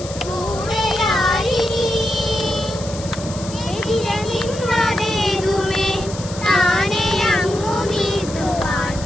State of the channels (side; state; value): left; noise; hiss, 13 dB below the sound